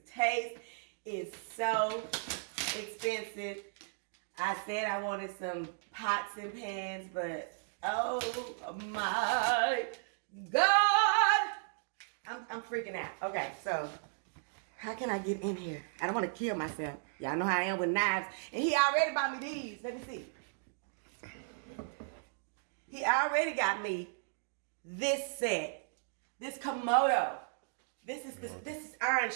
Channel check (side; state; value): left; silent; digital silence